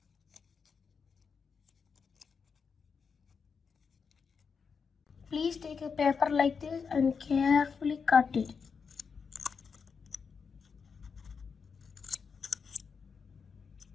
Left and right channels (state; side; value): quieter; right; 5.8 dB